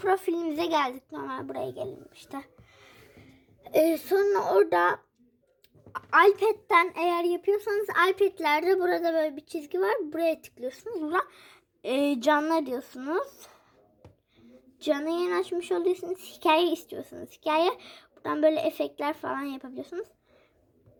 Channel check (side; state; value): both; identical; correlation 1.00